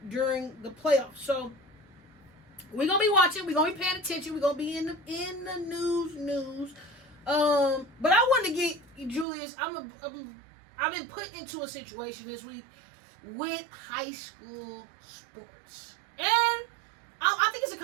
during the playoffs. So, we're going to be watching. We're going to be paying attention. We're going to be in the news. But I wanted to get, Julius, I've been put into a situation this week with high school sports. And I think it's a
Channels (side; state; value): left; drops out; at 9.2 s